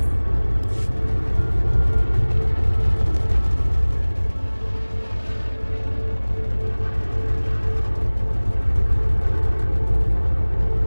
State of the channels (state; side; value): inverted; both; correlation -1.00